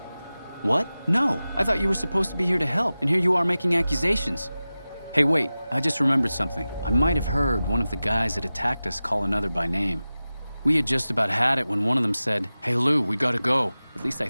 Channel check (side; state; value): both; inverted; correlation -0.96